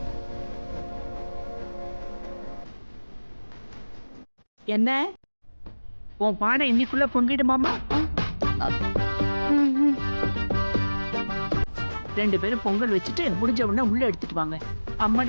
என்ன உன் பானை இன்னைக்குள்ள பொங்கிடுமாமா? 2 பேரும் பொங்கல் வச்சுட்டு முடிஞ்ச உடனே உள்ள எடுத்துட்டு வாங்க.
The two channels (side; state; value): both; inverted; correlation -1.00